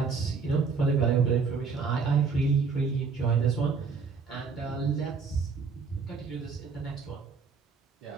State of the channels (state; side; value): quieter; left; 5.1 dB